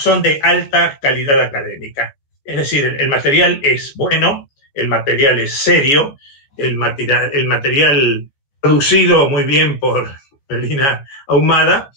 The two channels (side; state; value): right; late; 15 ms